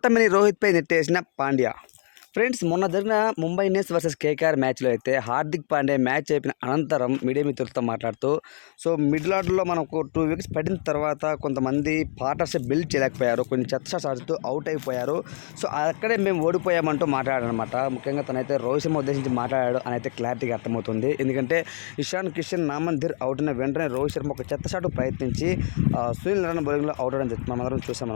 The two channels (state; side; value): silent; right; digital silence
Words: రోహిత్పై నెట్టేసిన పాండ్యా. ఫ్రెండ్స్, మొన్న జరిగిన ముంబై ఇండియన్స్ వర్సెస్ కేకేఆర్ మ్యాచ్లో అయితే హార్దిక్ పాండ్యా మ్యాచ్ అయిపోయిన అనంతరం మీడియా మిత్రులతో మాట్లాడుతూ, సో మిడిల్ ఆర్డర్లో మనకు 2 వికెట్స్ పడిన తర్వాత కొంతమంది పార్ట్నర్షిప్ బిల్డ్ చేయలేకపోయారు, కొన్ని చెత్త షాట్స్ ఆడుతూ అవుట్ అయిపోయారు. సో అక్కడే మేము ఓడిపోయామంటూ మాట్లాడాడనమాట. ముఖ్యంగా తనైతే రోహిత్ శర్మ ఉద్దేశించి మాట్లాడాడు అని అయితే క్లారిటీగా అర్థమవుతుంది. ఎందుకంటే ఇషాన్ కిషన్, నామన్ ధీర్ అవుట్ అయిన వెంటనే రోహిత్ శర్మ ఒక చెత్త షాట్ ప్రయత్నించి సునీల్ నారాయణ బౌలింగ్లో అవుట్ అవడం మనం అందరం